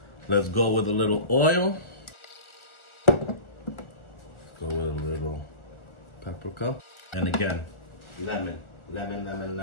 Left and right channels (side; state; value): right; late; 1.4 ms